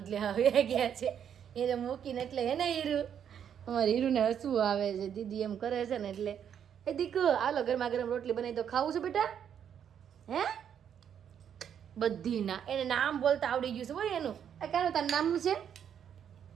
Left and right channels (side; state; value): left; quieter; 8.7 dB